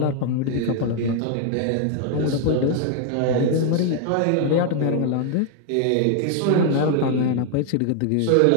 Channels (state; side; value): different; both; correlation 0.00